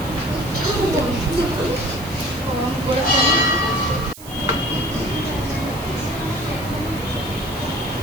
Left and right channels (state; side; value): noise; right; hiss, 16 dB below the sound